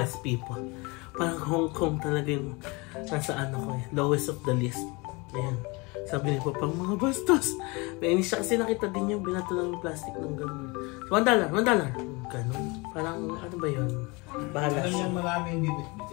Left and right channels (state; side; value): quieter; right; 26.8 dB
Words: people, parang Hong Kong talaga yung nasa lowest of the list. Ayan. Sabi niya pa pang mga bastos. Nainis siya kasi nakita din yung binato ng plastic ng gano'n. $1. Gano'n. Parang ano ba yun? Bahala Alam siya. niya marami yung